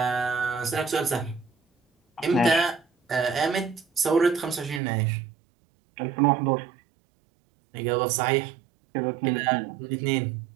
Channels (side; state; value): left; drops out; at 4.8 s